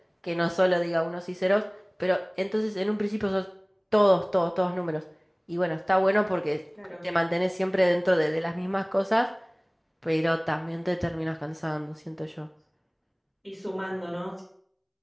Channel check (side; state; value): both; identical; correlation 1.00